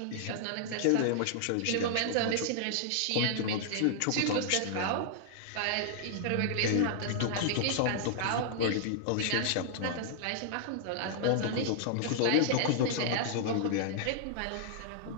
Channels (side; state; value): both; different; correlation -0.01